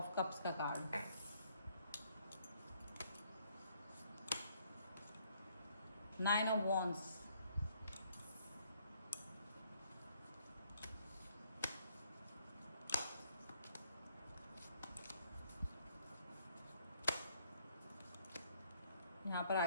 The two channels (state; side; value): inverted; both; correlation -0.67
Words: कप्स का कार्ड। नाइन ऑफ वॉन्ड्स, यहाँ पर आ